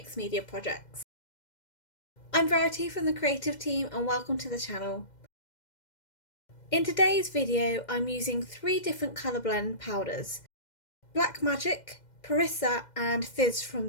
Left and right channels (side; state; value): right; late; 2.1 ms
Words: media projects. I'm Verity from the creative team and welcome to the channel. In today's video I'm using 3 different colour blend powders: Black Magic, Perissa and Fizz from